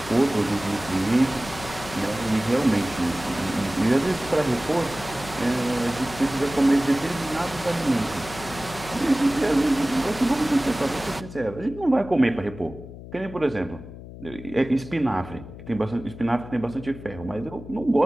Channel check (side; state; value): left; noise; hum, 14 dB below the sound